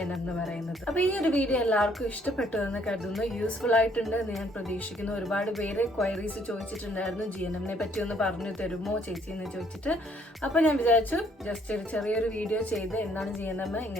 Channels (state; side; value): normal; both; correlation 0.65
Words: എന്ന് പറയുന്നത്. അപ്പോൾ ഈ ഒരു വീഡിയോ എല്ലാവർക്കും ഇഷ്ടപ്പെട്ടു എന്ന് കരുതുന്നു, യൂസ്ഫുൾ ആയിട്ടുണ്ട് എന്ന് ഞാൻ പ്രതീക്ഷിക്കുന്നു. ഒരുപാട് പേര് ക്വയറീസ് ചോദിച്ചിട്ടുണ്ടായിരുന്നു, GNM-നെ പറ്റി ഒന്ന് പറഞ്ഞു തരുമോ ചേച്ചി എന്ന് ചോദിച്ചിട്ട്. അപ്പോൾ ഞാൻ വിചാരിച്ചു ജസ്റ്റ് ഒരു ചെറിയൊരു വീഡിയോ ചെയ്ത് എന്താണ് GNM,